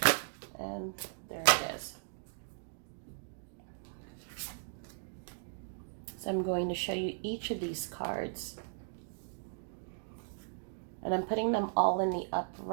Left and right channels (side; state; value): left; silent; digital silence